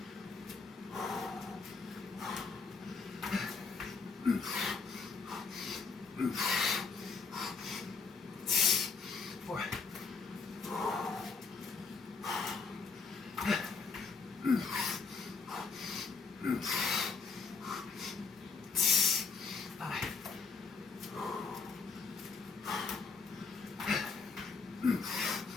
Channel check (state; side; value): quieter; right; 5.1 dB